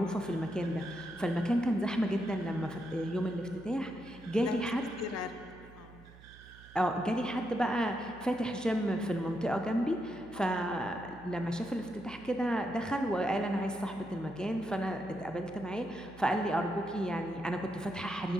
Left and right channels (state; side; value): noise; right; hum, 20 dB below the sound